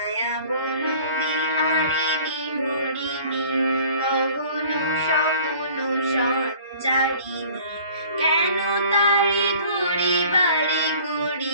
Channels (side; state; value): both; inverted; correlation -0.49